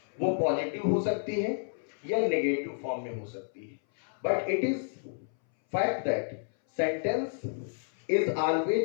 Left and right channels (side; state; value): right; silent; 57 dB below the other